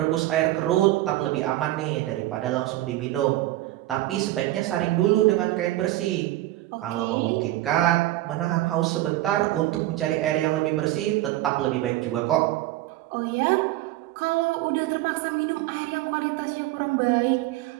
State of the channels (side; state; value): left; quieter; 16.1 dB